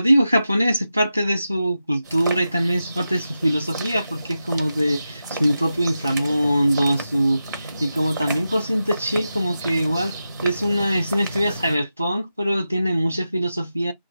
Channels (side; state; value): both; inverted; correlation -0.91